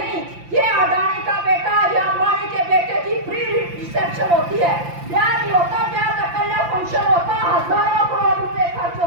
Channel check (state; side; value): late; left; 5.8 ms